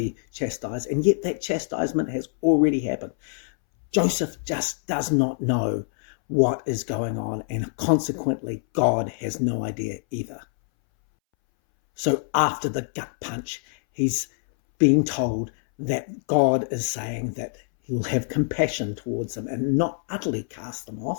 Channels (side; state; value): right; silent; 61 dB below the other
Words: chastised. And yet that chastisement has already happened. Joseph just does not know what is going on, and consequently God has no idea either. So after the gut punch, he's being told that God is saying that he will have compassion towards them and not utterly cast them